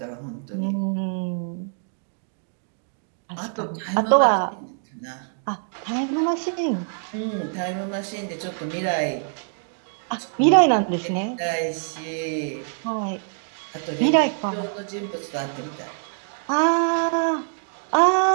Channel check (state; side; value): silent; left; digital silence